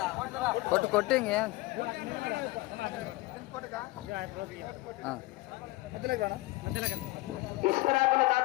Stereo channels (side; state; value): right; quieter; 20.7 dB